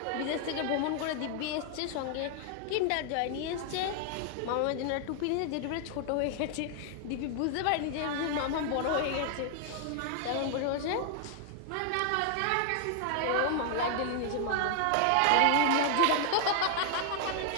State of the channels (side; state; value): both; different; correlation 0.00